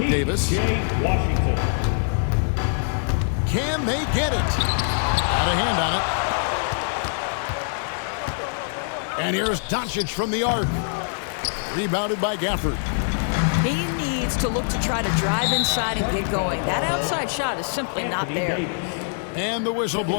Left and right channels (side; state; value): right; silent; digital silence